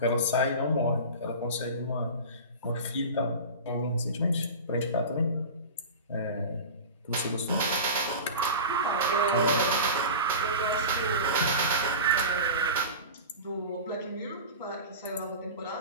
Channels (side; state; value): both; inverted; correlation -0.31